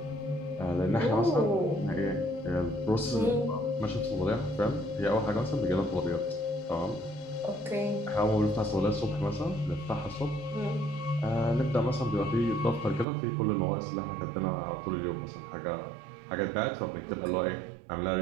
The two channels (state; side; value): drops out; left; at 13.1 s